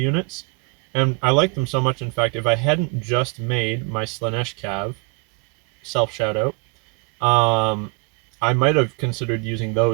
and I liked them so much. In fact, if I hadn't just made my Slanesh Cav self shout out, I might have considered using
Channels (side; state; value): left; quieter; 31.4 dB